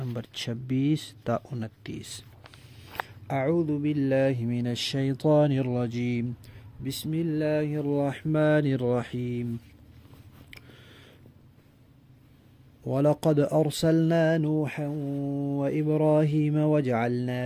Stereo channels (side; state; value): both; identical; correlation 1.00